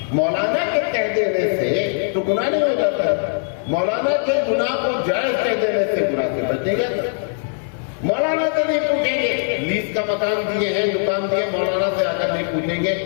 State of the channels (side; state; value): right; silent; 65 dB below the other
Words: مولانا کے کہہ دینے سے تو گناہ نہیں ہو جاتا ہے. مولانا کے گناہ کو جائز کہہ دینے سے گناہ سے بچیں گے. مولانا سے نہیں پوچھیں گے، لیز کا مکان دیے ہیں، دکان دیے، مولانا سے آ کر نہیں پوچھیں گے